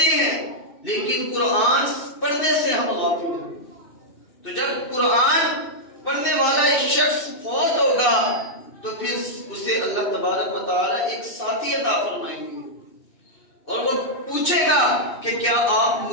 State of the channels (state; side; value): late; right; 2.5 ms